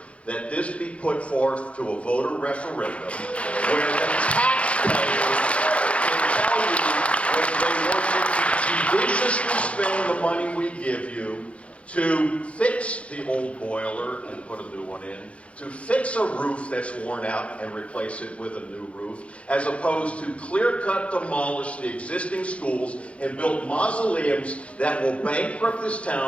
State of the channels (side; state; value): right; late; 0.062 ms